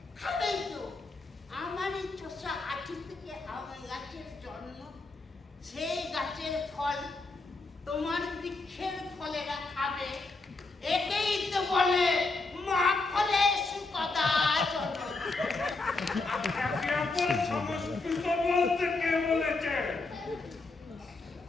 খাবেই তো। আমারই চষা আঠি থেকে আম গাছের জন্ম, সেই গাছের ফল তোমার বৃক্ষের ফলেরা খাবে। একেই তো বলে মা ফলে সুকদা জন্ম। আপনাকে আপনার সংস্কৃত বলতে কে বলেছে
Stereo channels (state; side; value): quieter; right; 3.5 dB